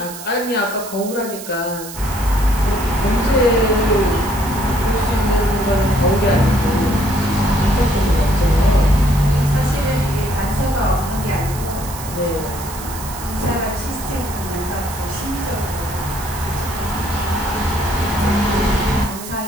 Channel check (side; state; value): right; noise; hiss, 12 dB below the sound